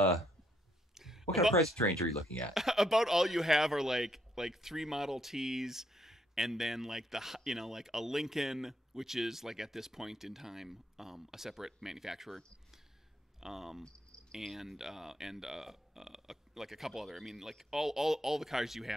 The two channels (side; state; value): both; normal; correlation 0.73